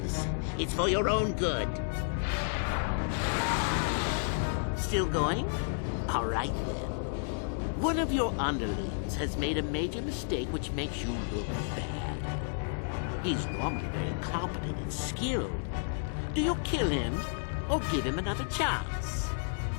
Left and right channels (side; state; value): right; silent; 57 dB below the other